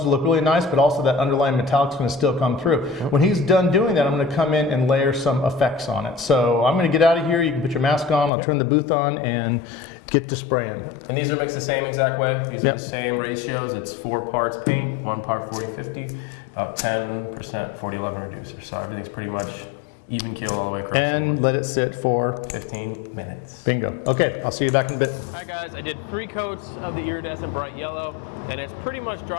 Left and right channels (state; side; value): drops out; right; at 8.3 s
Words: look really nice, but also that underlying metallic's going to still come through. When he's done doing that, I'm going to come in and layer some effects on it. So I'm going to get out of here. You can put your mask on. I'll turn the booth on and get to spraying. And these are mixed the same exact way. These are the same ratios. It's 4 parts paint, 1 part 40-50, about 10% 40-11 reducer. So everything's pretty much even keel all the way across the And board. let it sit for 15 minutes. bingo. Okay, I'll see you back in a bit. All right, guys, I did 3 coats of the iridescent bright yellow, and it's pretty much